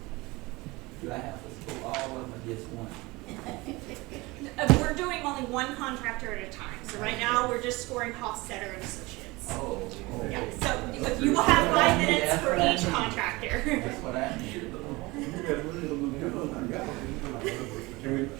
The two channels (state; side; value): quieter; left; 22.7 dB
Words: Do I have to score all of them or just one? We're doing only one contractor at a time. So right now we're just scoring Hofstetter and Associates. Oh, okay. Yeah. So you will have 5 minutes for each contractor. That's what I needed. Can we